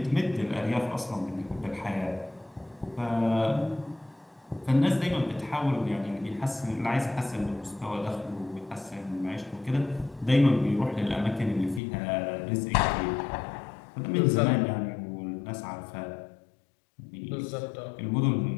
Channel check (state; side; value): drops out; right; at 11.8 s